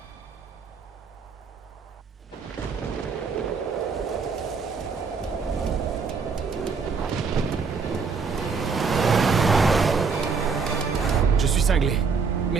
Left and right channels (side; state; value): left; quieter; 5.3 dB